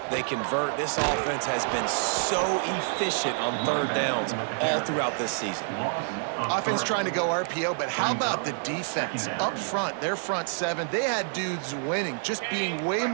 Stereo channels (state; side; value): silent; left; 60 dB below the other